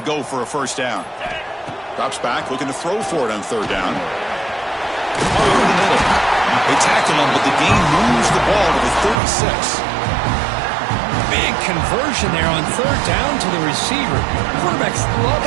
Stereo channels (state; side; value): drops out; left; at 9.2 s